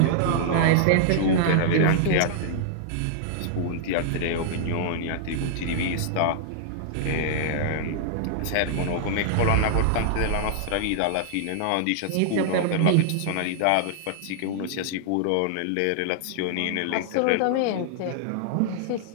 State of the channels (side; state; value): both; different; correlation -0.01